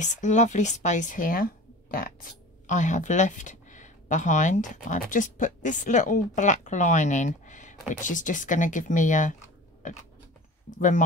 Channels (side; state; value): both; normal; correlation 0.39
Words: lovely space here that I have left behind. I've just put this little black line in, which is just going to give me a